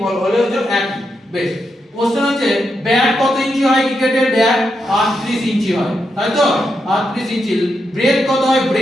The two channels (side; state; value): both; normal; correlation 0.84